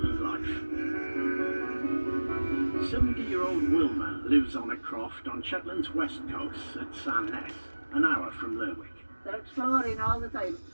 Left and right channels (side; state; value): both; inverted; correlation -1.00